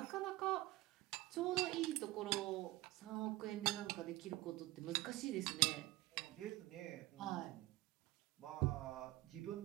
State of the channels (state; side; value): quieter; left; 18.5 dB